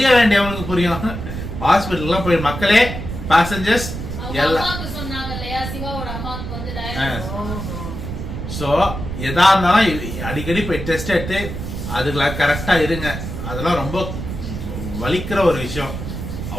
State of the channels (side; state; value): right; noise; rumble, 6 dB below the sound